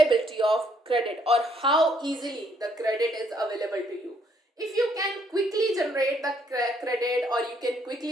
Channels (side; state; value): both; normal; correlation 0.68